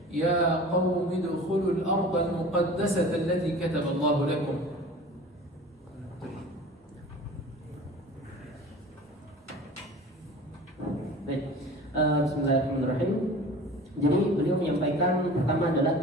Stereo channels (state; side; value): normal; both; correlation 0.40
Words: يا قوم ادخلوا الأرض المقدسة التي كتب الله لكم. Baik, bismillahirrahmanirrahim. Jadi beliau menyampaikan pertama adalah